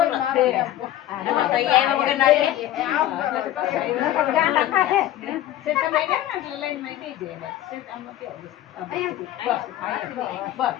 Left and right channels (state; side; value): quieter; right; 13.2 dB